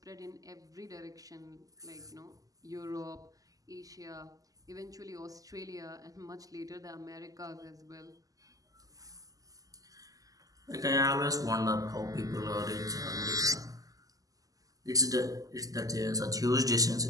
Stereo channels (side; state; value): left; late; 0.17 ms